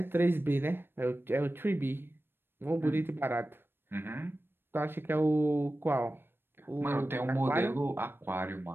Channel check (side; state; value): left; late; 0.10 ms